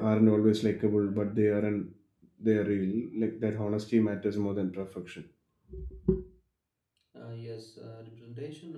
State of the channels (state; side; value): identical; both; correlation 1.00